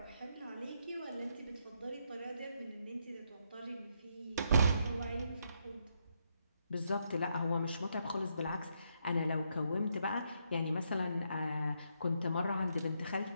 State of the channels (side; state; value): both; inverted; correlation -0.77